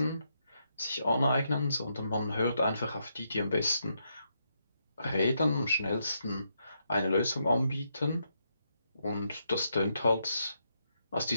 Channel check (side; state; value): both; inverted; correlation -0.79